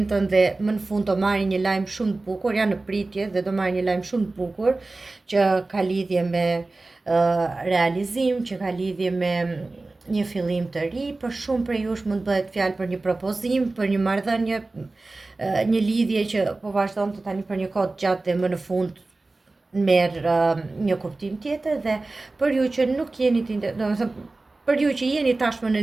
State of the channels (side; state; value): left; quieter; 3.3 dB